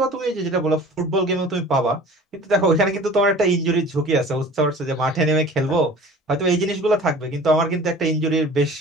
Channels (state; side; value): normal; both; correlation 0.44